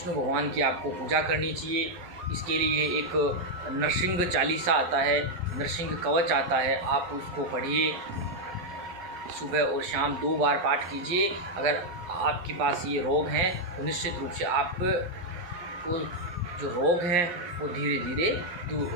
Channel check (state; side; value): late; left; 11 ms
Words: भगवान की आपको पूजा करनी चाहिए। इसके लिए एक नरसिंह चालीसा आता है, नरसिंह कवच आता है, आप उसको पढ़िए। सुबह और शाम 2 बार पाठ कीजिए। अगर आपके पास ये रोग हैं तो निश्चित रूप से आपको जो रोग हैं वो धीरे धीरे दूर हो